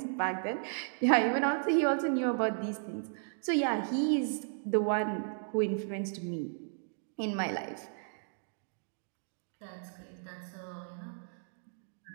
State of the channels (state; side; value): silent; left; digital silence